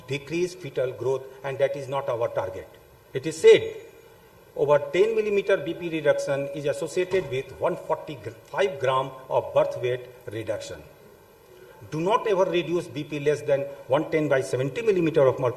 decreased fetal growth, and that is not our target. It is said over 10 millimeter BP reduction is associated with 145 gram of birth weight reduction. Do not ever reduce BP less than 110 by 70 millimeter of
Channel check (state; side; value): identical; both; correlation 1.00